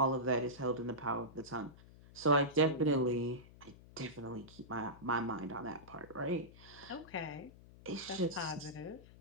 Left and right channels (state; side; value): noise; left; hum, 20 dB below the sound